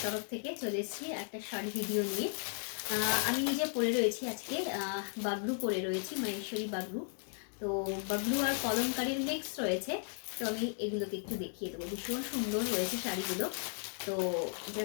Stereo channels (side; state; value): right; silent; 54 dB below the other